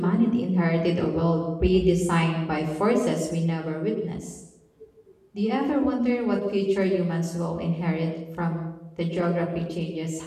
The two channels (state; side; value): identical; both; correlation 1.00